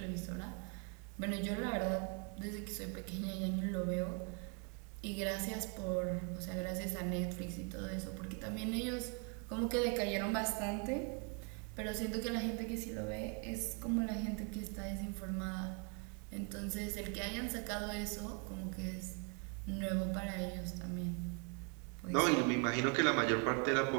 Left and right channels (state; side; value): quieter; left; 37.6 dB